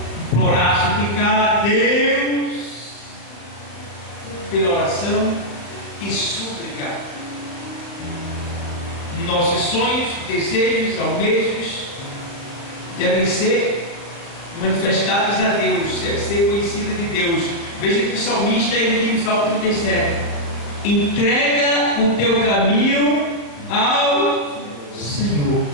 implorar, suplicar a Deus pela oração e súplica. Nossos sonhos, desejos, almejos devem ser manifestados a Deus, devem ser conhecidos de Deus. Veja que o salmista ele diz no Salmo 37: entrega o teu caminho ao Senhor,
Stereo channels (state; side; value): late; right; 36 ms